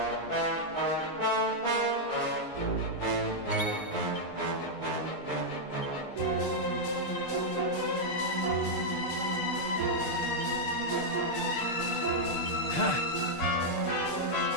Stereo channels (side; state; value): right; late; 6.7 ms